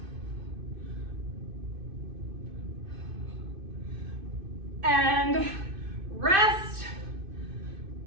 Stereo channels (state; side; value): late; left; 2.5 ms